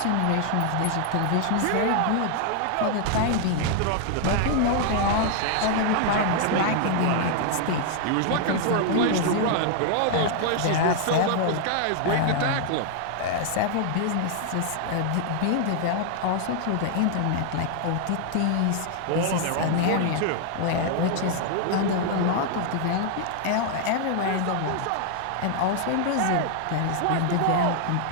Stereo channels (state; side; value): different; both; correlation 0.00